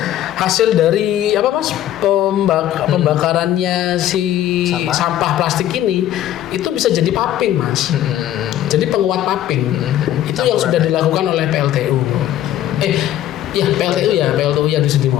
hasil dari Mas, pembakarannya si sampah plastik ini itu bisa jadi paping, Mas. Jadi penguat paping. Itu yang sudah dilakukan oleh PLTU. PLTU yang di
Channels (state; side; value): quieter; right; 12.4 dB